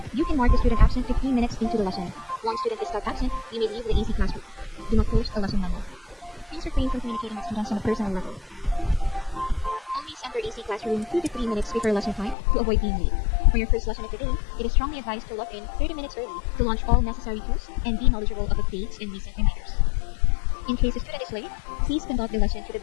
You can mark the student absent 15 minutes into the lesson. Once student is stuck absent, you may leave the AC classroom. Do not post a lesson memo. Please refrain from communicating with students on a personal level. enter AC classroom 2 to 3 minutes before lesson time to avoid being late. For your first lesson of the day, it is strongly advised to log in 30 minutes early to launch all necessary tools and be knowledgeable of updates and recent reminders. In case a student is late, please conduct the lesson to the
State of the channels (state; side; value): drops out; right; at 12.4 s